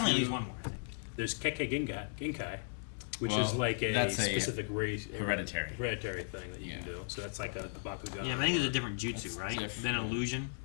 at least one more, I think. There's Kekkei Genkai, which Well, is like a that's a specific race, hereditary. hereditary thing that you can Yeah. do. So that's like a Bakugan. Yeah, but I think there's a different jutsu, That's right? different. Than illusion.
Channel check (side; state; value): right; silent; digital silence